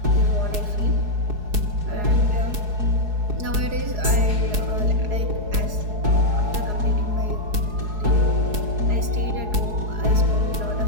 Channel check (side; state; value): left; late; 4.8 ms